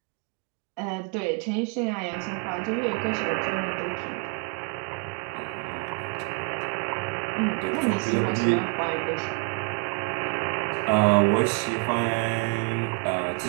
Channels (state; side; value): quieter; left; 33.7 dB